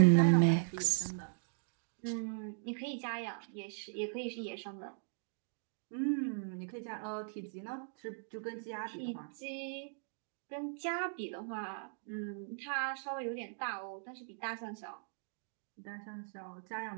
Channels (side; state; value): left; silent; digital silence